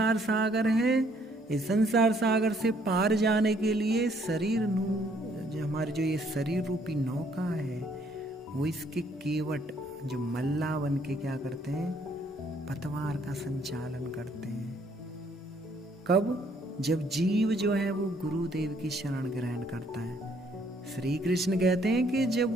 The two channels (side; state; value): both; normal; correlation 0.65